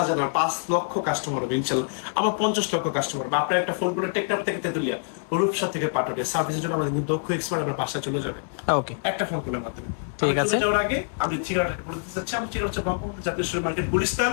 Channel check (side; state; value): right; silent; digital silence